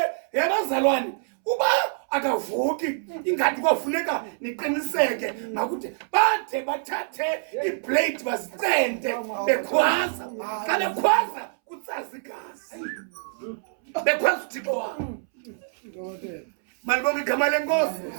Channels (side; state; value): left; silent; 61 dB below the other